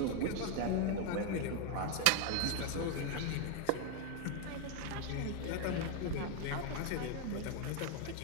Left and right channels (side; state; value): both; different; correlation 0.01